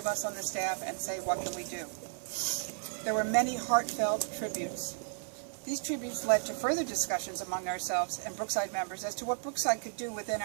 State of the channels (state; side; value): silent; left; 55 dB below the other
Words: us on the staff and say, what can we do? There were many heartfelt tributes. These tributes led to further discussions among ourselves and Brookside members as to what Brookside could do within